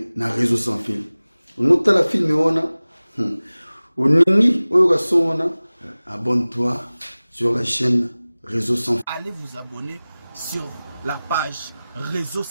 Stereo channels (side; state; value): both; inverted; correlation -0.98